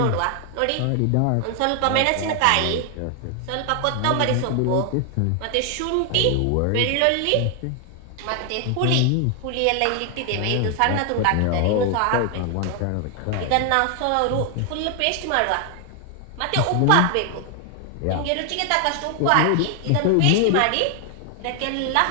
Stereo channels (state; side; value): different; both; correlation 0.00